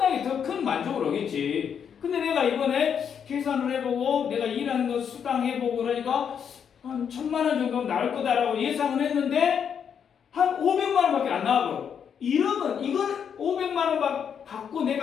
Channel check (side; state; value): right; quieter; 7.7 dB